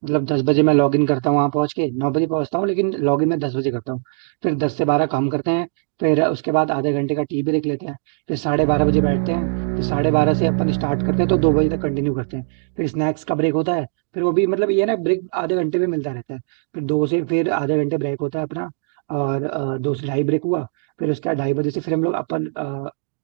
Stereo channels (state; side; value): silent; left; digital silence